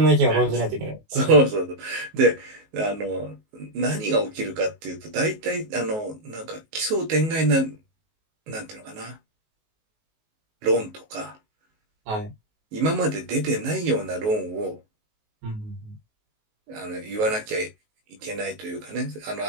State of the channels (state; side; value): late; left; 19 ms